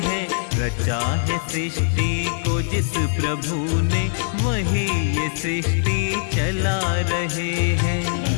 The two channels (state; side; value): silent; right; digital silence